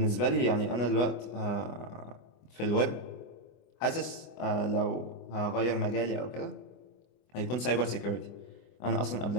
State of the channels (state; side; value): late; right; 24 ms